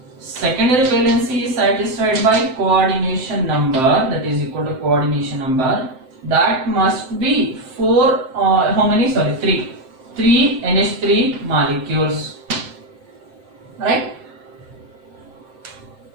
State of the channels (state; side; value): late; left; 7.7 ms